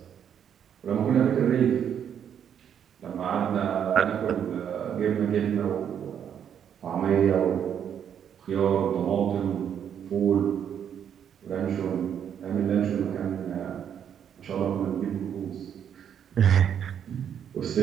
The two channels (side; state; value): left; quieter; 8.7 dB